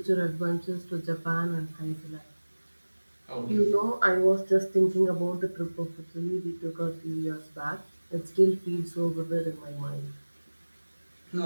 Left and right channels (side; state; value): both; inverted; correlation -1.00